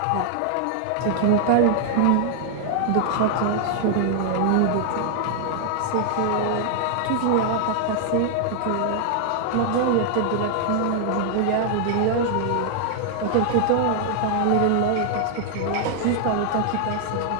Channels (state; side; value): different; both; correlation 0.00